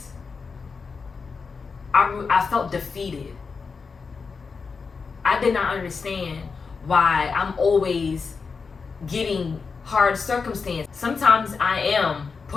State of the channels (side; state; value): right; quieter; 5.1 dB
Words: I felt defeated. I did not understand why I'm always getting hard circumstances. Sometimes I am